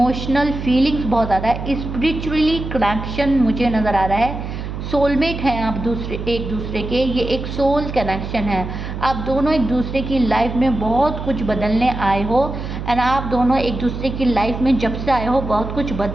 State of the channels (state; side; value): noise; right; hum, 7 dB below the sound